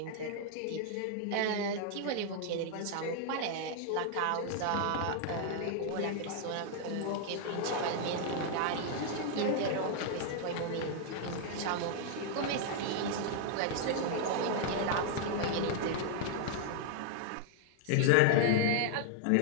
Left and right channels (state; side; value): different; both; correlation 0.00